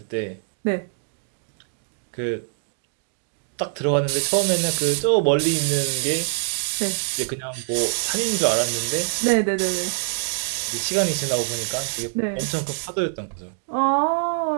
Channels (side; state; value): left; silent; 63 dB below the other